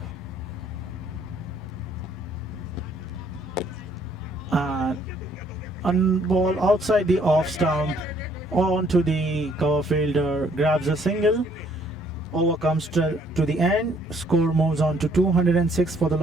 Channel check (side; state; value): both; normal; correlation 0.64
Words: And ball outside the off stump onto the cover fielder, grabs a single. Over comes to the end. Score moves on to 206 for the